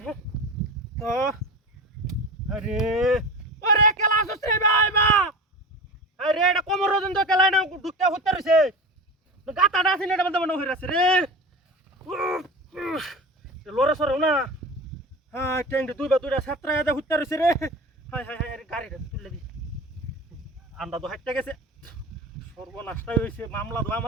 তো আরে ওরে খেলা আসছ রে ভাই বা আরে এটা কোমর রজন তো খেলাই না ঢুকতে হুতে রয়েছে গাতাটা আছে না এটা মধ্যে মনে হইরাছে রে লড়ে সরো না হ্যাঁ ট্যাঙ্কি দুইটা সাতটা এদে হুতে রয়েছে রে হাই হাই হাই গাড়িটা তুলে দি আন্ডা তো হাইটটা গেছে সর্বনাশটাই হয়েছে মামলা তো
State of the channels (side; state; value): both; normal; correlation 0.30